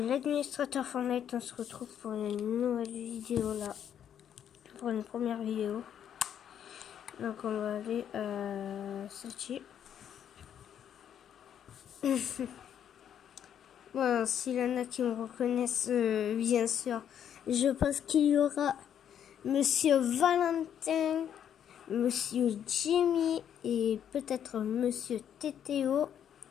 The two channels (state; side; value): quieter; right; 9.3 dB